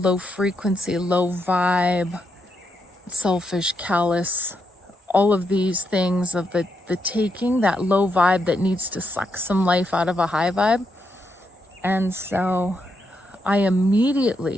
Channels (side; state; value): both; normal; correlation 0.81